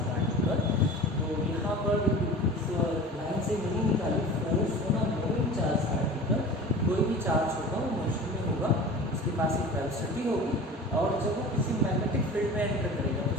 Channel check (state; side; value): normal; both; correlation 0.37